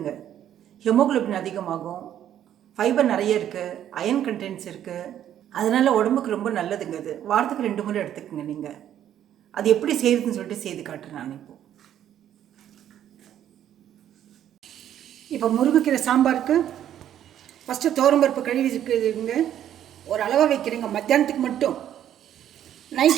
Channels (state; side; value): quieter; left; 10.8 dB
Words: ஹெமோகுளோபின் அதிகமாகும், ஃபைபர் நிறைய இருக்குது, அயன் கண்டென்ட்ஸ் இருக்குது. அதனால் உடம்புக்கு ரொம்ப நல்லதுங்க. அது வாரத்துக்கு 2 முறை எடுத்துக்கோங்க நீங்கள். அது எப்படி செய்யுதுன்னு சொல்லிட்டு செய்து காட்டுறேன் நான் இப்போ முருங்கைக்கீரை சாம்பாருக்கு ஃபஸ்ட்டு துவரம்பருப்பு கழுவி இருக்குதுங்க. ஒரு அளவாக வைக்கிறீங்க, மத்தியானத்துக்கு மட்டும்,